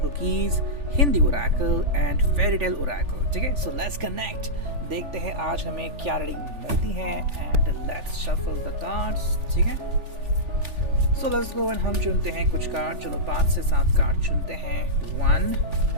cookies, Hindi Oracle and fairy tale Oracle. ठीक है, सो लेट्स कनेक्ट, देखते हैं आज हमें क्या रीडिंग मिलती है and let's shuffle the cards. ठीक है, सो लेट्स गो एंड हम चुनते हैं कुछ कार्ड। चलो 5 से 7 कार्ड चुनते हैं। 1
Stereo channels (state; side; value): late; left; 3.4 ms